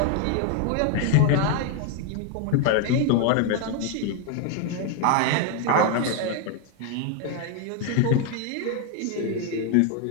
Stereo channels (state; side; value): different; both; correlation 0.01